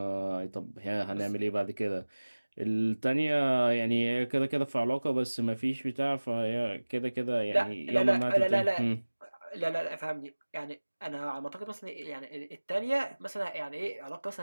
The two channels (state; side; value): inverted; both; correlation -1.00